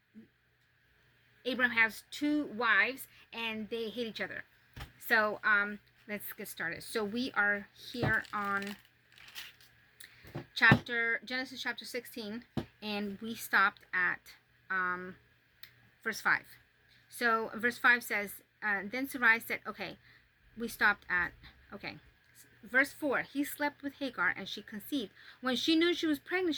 Abram has 2 wives and they hate each other. So let's get started. So we are here on Genesis chapter 16, and we stopped at verse 5. So verse 5 says, then Sarai said, okay, we stopped at, okay. Verse 4, he slept with Hagar and she conceived. When she knew she was pregnant,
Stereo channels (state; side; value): identical; both; correlation 1.00